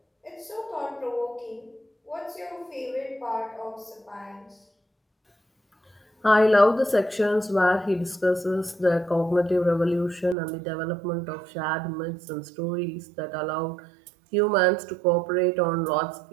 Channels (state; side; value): drops out; left; at 10.4 s